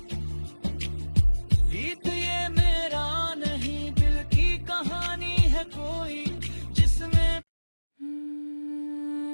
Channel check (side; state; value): both; inverted; correlation -1.00